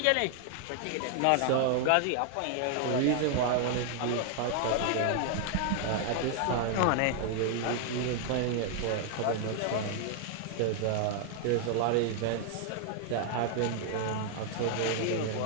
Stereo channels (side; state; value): both; different; correlation 0.00